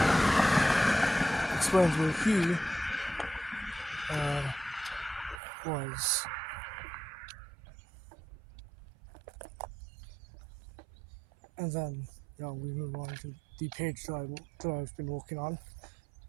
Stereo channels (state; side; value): drops out; left; at 5.4 s